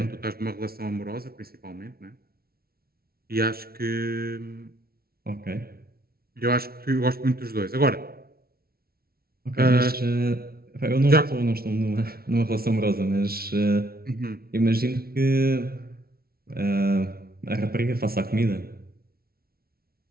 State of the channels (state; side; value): late; left; 0.44 ms